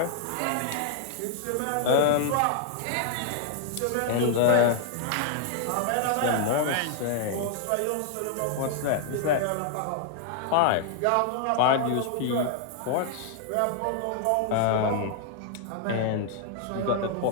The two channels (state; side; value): different; both; correlation 0.00